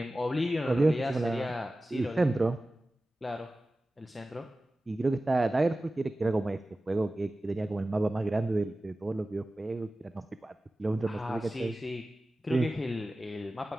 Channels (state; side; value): normal; both; correlation 0.96